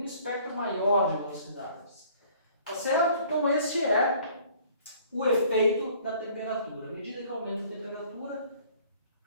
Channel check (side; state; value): both; inverted; correlation -0.55